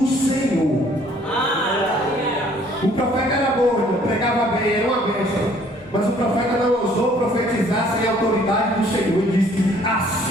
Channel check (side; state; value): both; normal; correlation 0.59